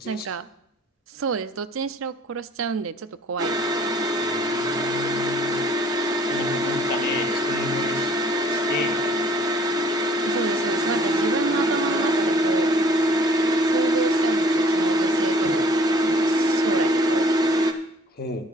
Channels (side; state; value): both; normal; correlation 0.55